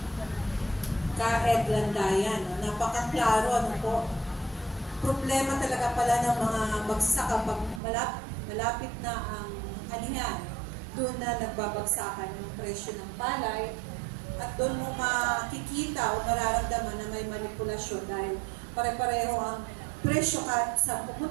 Ka-Ed Landayan, napakaklaro po. Problema talaga pala ng mga magsasaka pag malapit na ang anihan, doon na nagbabagsakan yung presyo ng palay at doon mo makikita o mararamdaman na may manipulasyon dahil pare-pareho ang presyo kahit sa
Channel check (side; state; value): left; drops out; at 7.8 s